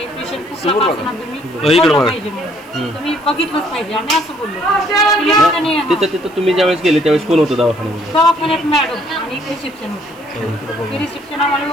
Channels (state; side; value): noise; right; hiss, 27 dB below the sound